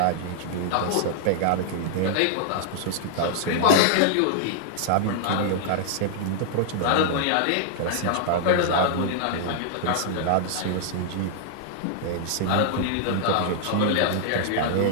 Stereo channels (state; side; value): different; both; correlation -0.01